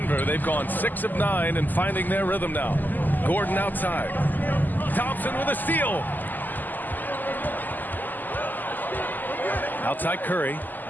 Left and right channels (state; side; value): late; right; 0.086 ms